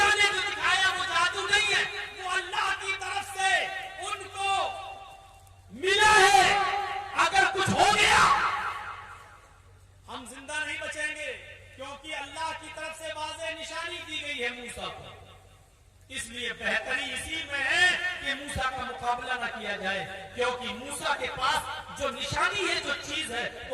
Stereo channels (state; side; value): identical; both; correlation 1.00